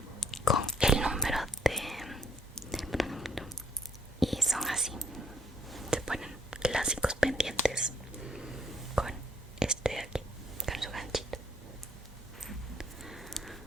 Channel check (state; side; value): normal; both; correlation 0.66